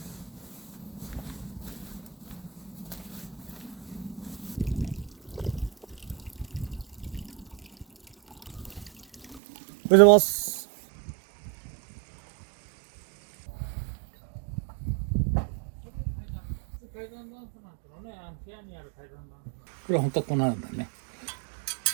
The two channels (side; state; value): left; drops out; at 9.4 s